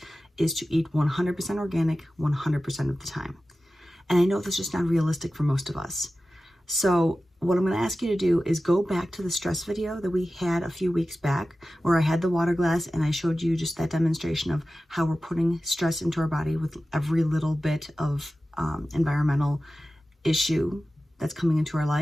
is to eat 100% organic 100% of the time. And I know this is just not realistic for most of us. So what I'm going to ask you to do is go back to the stress video that we had a few weeks back, where I had the water glass and I showed you just that demonstration of how we're putting stress into our body with every little bit of environmental issue that's coming into our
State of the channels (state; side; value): normal; both; correlation 0.95